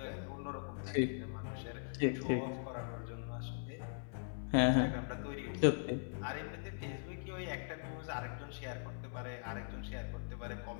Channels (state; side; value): silent; right; digital silence